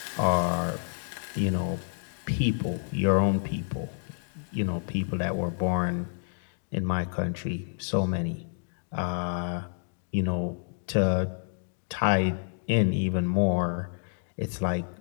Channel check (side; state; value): right; silent; digital silence